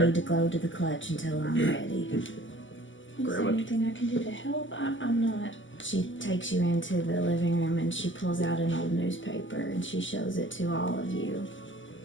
need to go to the clutch until I'm ready. Is there Grandma. anything I can do to help? I'm not. She takes you into the living room and she pulls out an old newspaper and she shows it to all of you.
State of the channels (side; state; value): right; late; 0.55 ms